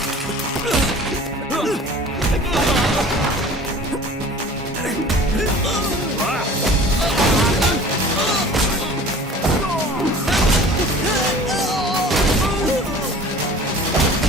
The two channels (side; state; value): both; normal; correlation 0.44